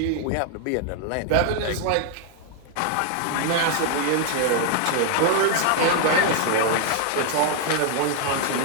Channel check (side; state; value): both; different; correlation 0.00